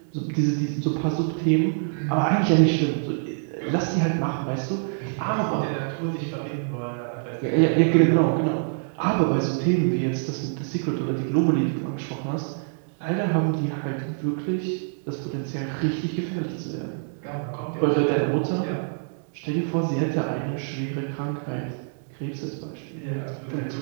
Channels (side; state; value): left; silent; digital silence